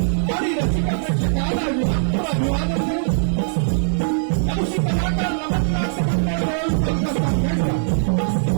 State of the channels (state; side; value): silent; left; digital silence